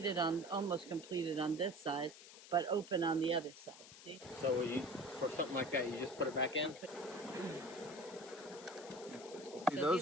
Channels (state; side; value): noise; left; hiss, 17 dB below the sound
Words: on, almost completed on this side, but open on the other side. See? So for something like that, you just put it back in? See, So those